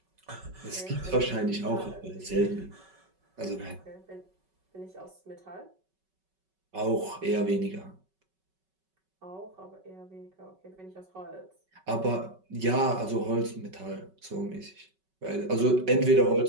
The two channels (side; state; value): left; late; 5.3 ms